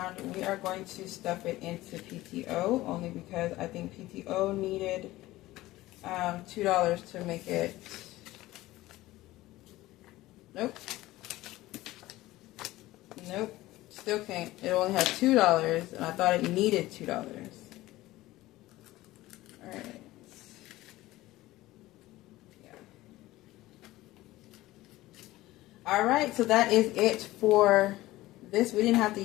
we are going to stuff it into PTO, only because I think PTO needed $2 to make it. Nope. Nope. Still can't. It only had $2, and I thought it needed $2. Alright. Yeah. Alright, so that is it for this. We didn't have to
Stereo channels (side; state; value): right; quieter; 17.4 dB